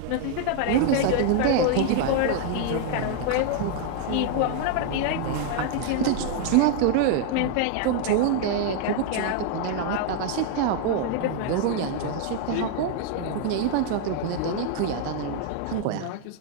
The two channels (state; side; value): different; both; correlation 0.00